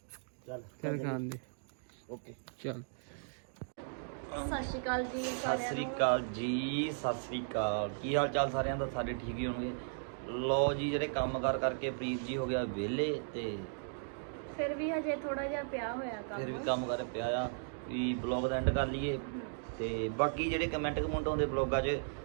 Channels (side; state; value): left; silent; digital silence